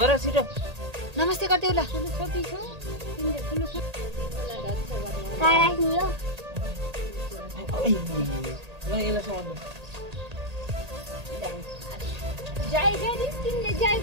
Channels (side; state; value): left; late; 1.8 ms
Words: छिटो। नमस्ते गरिदेऊ ल। जय गरी तिमीले जय